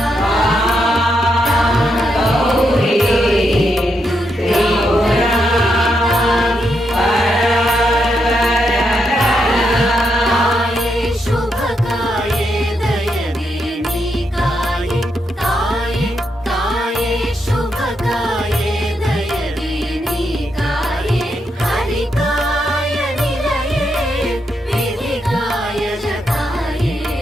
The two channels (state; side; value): normal; both; correlation 0.81